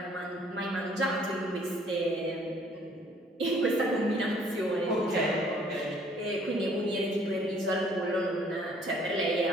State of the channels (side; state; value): both; normal; correlation 0.59